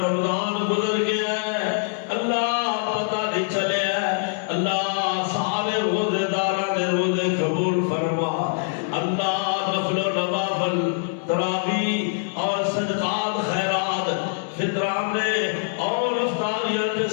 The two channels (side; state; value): right; silent; 63 dB below the other